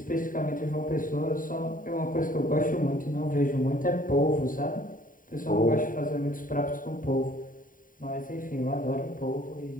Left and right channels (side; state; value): right; late; 0.39 ms